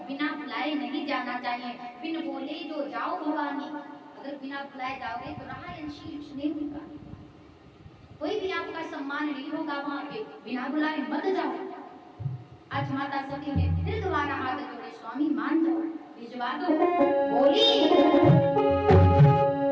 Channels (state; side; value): identical; both; correlation 1.00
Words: बिना बुलाए नहीं जाना चाहिए। बिन बोले जो जाओ भवानी, अगर बिना बुलाए जाओगे तो राह अंशीष नहीं होगा, कोई भी आपका सम्मान नहीं होगा वहां पे। बिना बुलाए मत जाओ। आज माता सती ने फिर दोबारा हाथ जोड़े, स्वामी मान जाओ, भिजवा दो। बोली